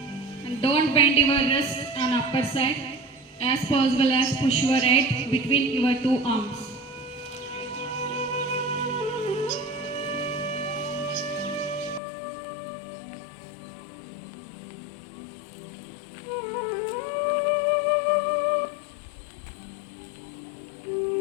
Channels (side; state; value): right; drops out; at 12.0 s